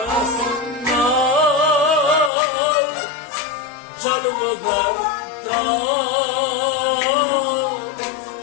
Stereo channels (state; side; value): drops out; right; at 2.3 s